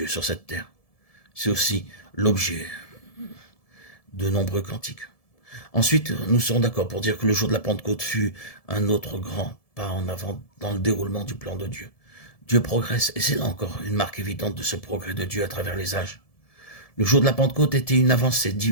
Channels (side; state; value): right; late; 1.7 ms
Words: sur cette terre. C'est aussi l'objet de nombreux cantiques. Ensuite, nous serons d'accord pour dire que le jour de la Pentecôte fut un autre grand pas en avant dans le déroulement du plan de Dieu. Dieu progresse, et c'est là encore une marque évidente de ce progrès de Dieu à travers les âges. Le jour de la Pentecôte était une avancée